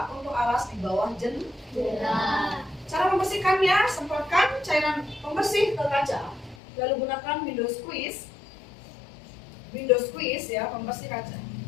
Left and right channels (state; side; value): drops out; right; at 6.6 s